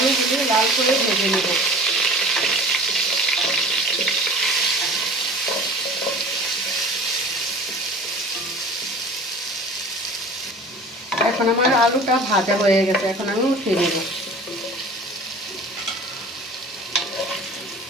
লাল করে ভেজে নেব। এখন আমার আলুটা ভাজা হয়ে গেছে, এখন আমি উঠিয়ে নেব।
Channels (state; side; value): normal; both; correlation 0.42